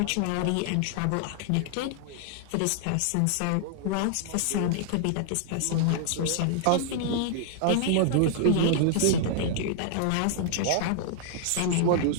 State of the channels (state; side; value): different; both; correlation -0.01